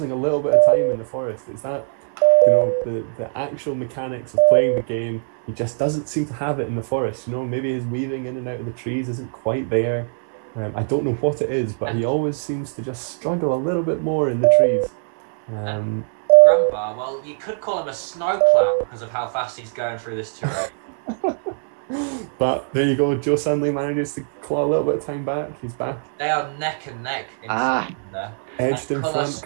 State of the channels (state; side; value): silent; left; digital silence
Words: a little bit of time in the forest. It's that, the actual mechanics of playing the game. He just doesn't seem to have it in the forest. Maybe his weaving in and out of the trees isn't quite there. I don't know what it is, but he always seems to just struggle a little bit more in the trees. Granbar, well, you could call him a snowplow because of how fast he's going through this terrain. But there you go, Joe Sunley manages to claw a little bit of time back. He's back. They are neck and neck in there. Edged in front,